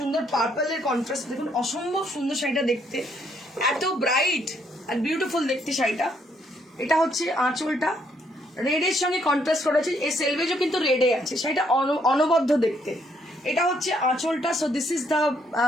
পার্পলের কন্ট্রাস্ট। দেখুন অসম্ভব সুন্দর শাড়িটা দেখতে, এত ব্রাইট আর বিউটিফুল দেখতে শাড়িটা। এটা হচ্ছে আঁচলটা, রেডের সঙ্গে কন্ট্রাস্ট করেছে, এই সেলভেজও কিন্তু রেডে আছে, শাড়িটা অনবদ্য দেখতে। এটা হচ্ছে আঁচলটা। So this is the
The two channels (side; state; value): both; normal; correlation 0.71